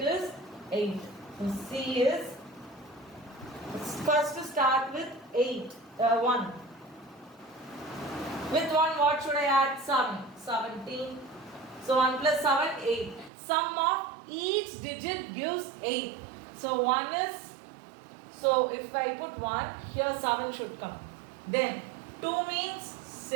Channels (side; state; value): left; drops out; at 13.3 s